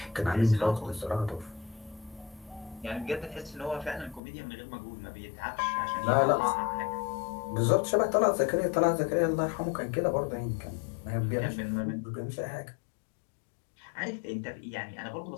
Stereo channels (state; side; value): drops out; right; at 4.2 s